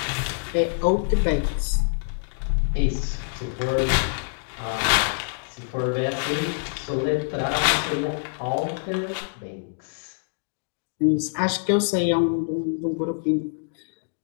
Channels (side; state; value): right; silent; digital silence